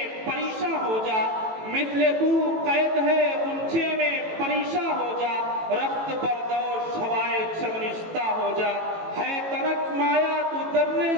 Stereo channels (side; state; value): left; late; 18 ms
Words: پریشاں ہو جا، مثل کو قید ہے غنچے میں پریشاں ہو جا، رخت بردوش ہوائے چمنشتہ ہو جا، ہے تنک مایا تو درے